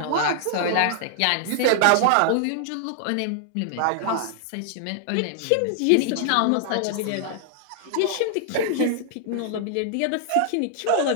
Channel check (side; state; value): both; different; correlation -0.01